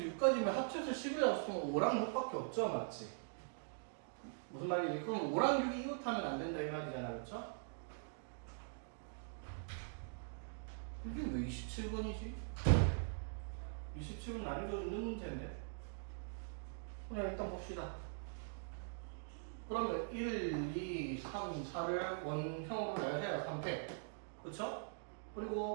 6까지면 합쳐서 11이 없으면 5랑 6밖에 없죠, 맞지? 무슨 말이지? 그럼 5랑 6이 이웃하면 안 된다 이 말이잖아, 그렇죠? 이게 왜 27번이지? 27번 난이도 있는 문제인데? 그냥 일단 봅시다. 그러면 1, 2, 3, 4를 원형으로 나열해야 3팩. 그쵸?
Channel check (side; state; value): left; silent; digital silence